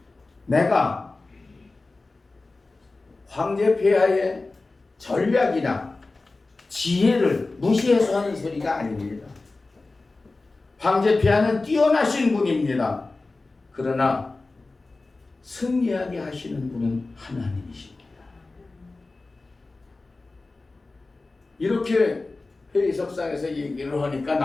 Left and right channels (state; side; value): quieter; right; 3.4 dB